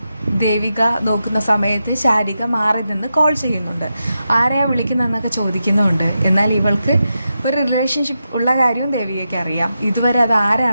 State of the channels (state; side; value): inverted; both; correlation -0.88